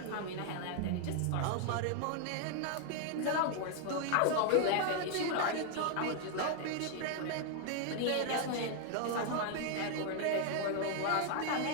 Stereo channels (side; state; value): both; different; correlation 0.00